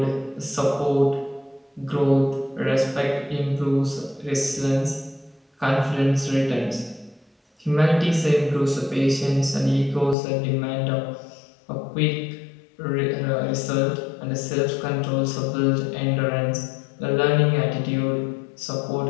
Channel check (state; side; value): drops out; right; at 10.2 s